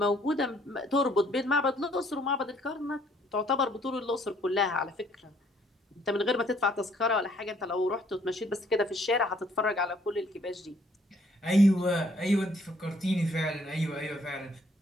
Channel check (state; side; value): normal; both; correlation 0.64